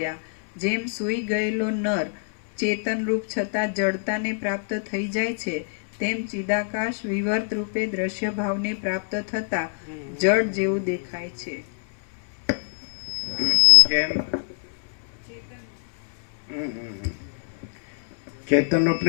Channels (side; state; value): right; silent; 62 dB below the other